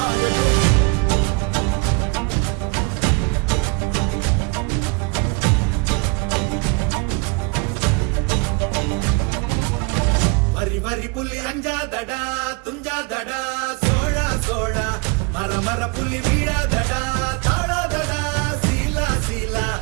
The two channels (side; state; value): left; quieter; 30.0 dB